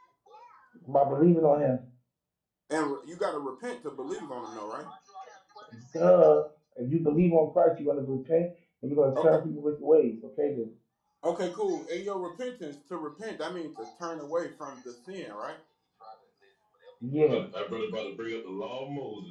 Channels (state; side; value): identical; both; correlation 1.00